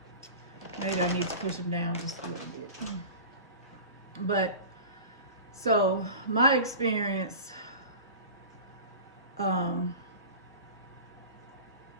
Maybe I need to push them down just a little bit. But, so, my experience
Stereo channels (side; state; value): both; inverted; correlation -0.36